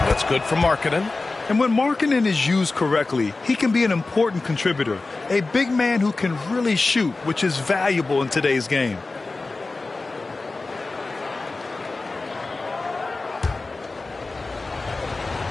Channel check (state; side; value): quieter; right; 3.5 dB